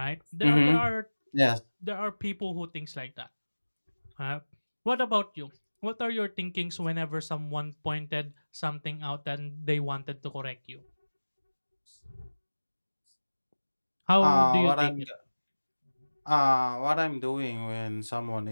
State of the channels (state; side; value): inverted; both; correlation -1.00